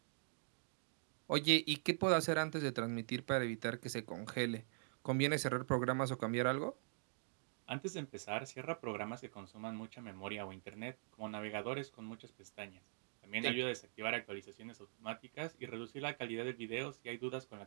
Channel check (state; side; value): silent; left; digital silence